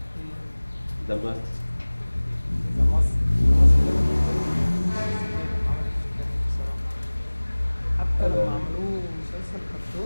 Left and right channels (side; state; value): both; inverted; correlation -1.00